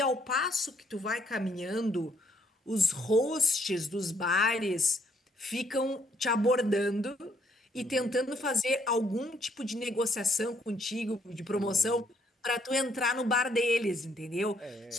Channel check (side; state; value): both; normal; correlation 0.69